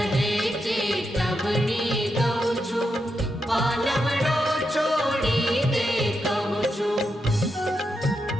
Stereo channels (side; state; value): both; normal; correlation 0.85